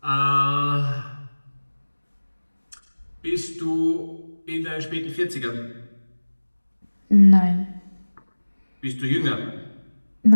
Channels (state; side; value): inverted; both; correlation -1.00